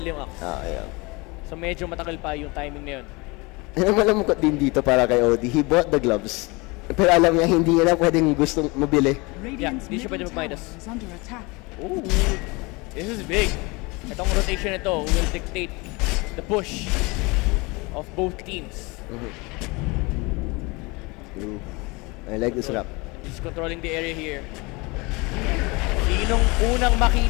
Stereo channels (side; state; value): right; quieter; 25.9 dB